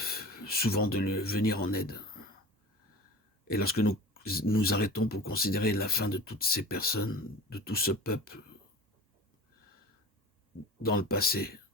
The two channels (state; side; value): normal; both; correlation 0.35